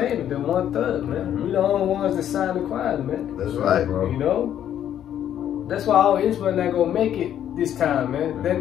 the 1/3, man. We the only ones that signed the choir, man. That's right, bro. You know? That's why all Israel not gonna make it this time, man. They're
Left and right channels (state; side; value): quieter; right; 10.4 dB